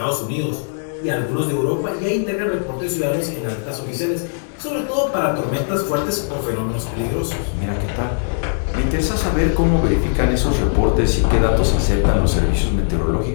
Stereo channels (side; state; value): right; silent; digital silence